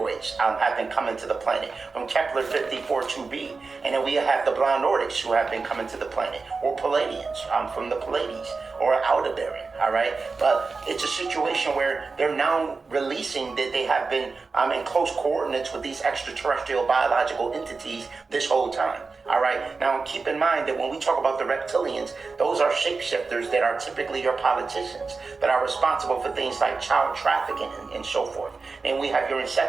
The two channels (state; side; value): quieter; left; 4.3 dB